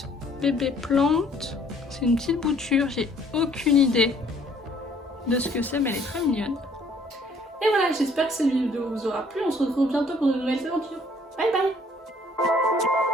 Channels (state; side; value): normal; both; correlation 0.60